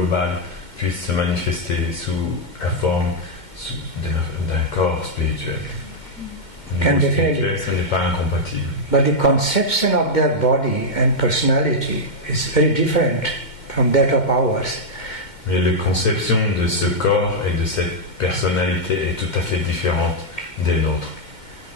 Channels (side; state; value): right; late; 2.2 ms